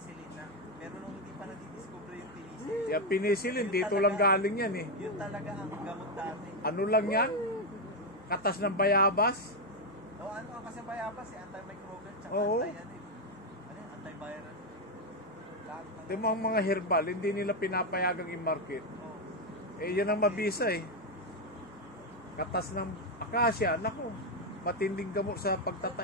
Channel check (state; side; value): normal; both; correlation 0.05